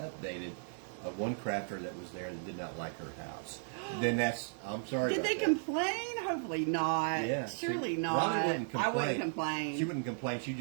One crafter that was there that did not like her house. Then I'm sorry. Did they complain? Hopefully not. Yeah, Surely not. Robin wouldn't complain. I wouldn't complain. She wouldn't complain. She'd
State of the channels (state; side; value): silent; left; 54 dB below the other